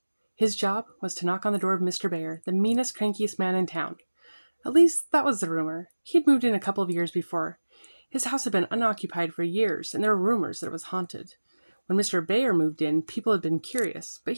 His job was to knock on the door of Mr. Bear, the meanest, crankiest man in town. At least, that was the rumor. He had moved in a couple of years before. His house had been unoccupied for years, and there were rumors that it was haunted. When Mr. Bear moved in, people had been curious, but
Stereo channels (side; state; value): both; inverted; correlation -1.00